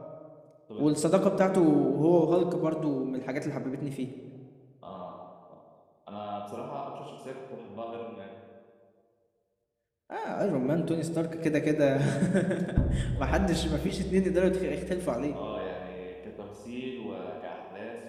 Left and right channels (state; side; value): identical; both; correlation 1.00